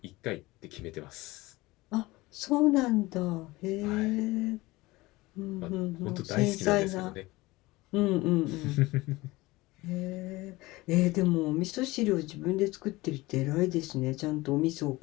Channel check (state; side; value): quieter; right; 20.5 dB